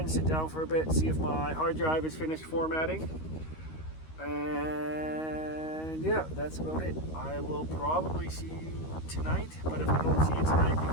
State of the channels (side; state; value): right; late; 13 ms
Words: sit down for a bit, see if my hard drive is finished formatting. And yeah, that's about it. I will probably see you tonight, but if I don't see you tonight